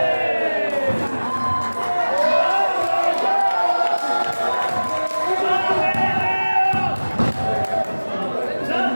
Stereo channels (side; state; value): both; inverted; correlation -1.00